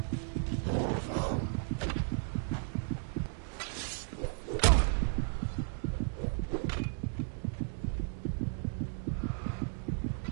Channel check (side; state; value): left; silent; 55 dB below the other